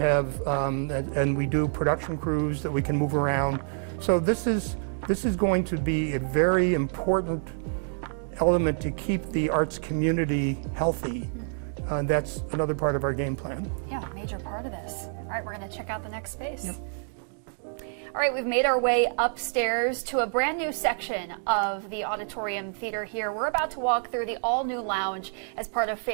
and we do production crews that we can move around. So this is going to be a very important element to keep the arts community healthy That's another part of our game plan. Yeah, major part of this. All right, we're going to check out the next space. Yep. All right, we've made our way upstairs to a brand new section of the auditorium theater here. We're about to walk through the all-new lounge as part of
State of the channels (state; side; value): silent; left; 60 dB below the other